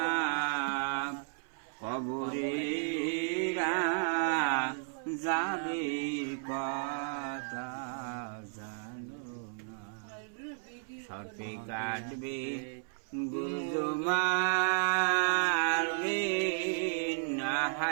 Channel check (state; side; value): silent; left; 55 dB below the other